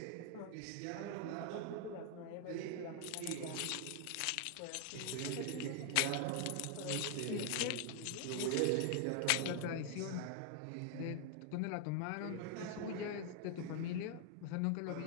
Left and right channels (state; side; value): different; both; correlation 0.00